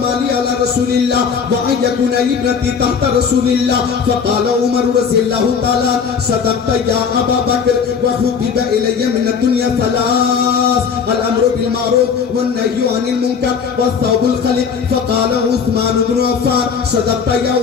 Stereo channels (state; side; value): quieter; right; 6.4 dB